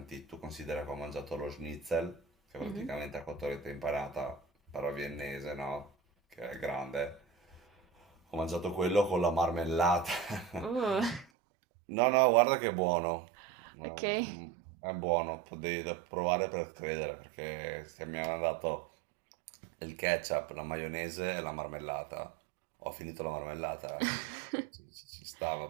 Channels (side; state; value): left; drops out; at 11.2 s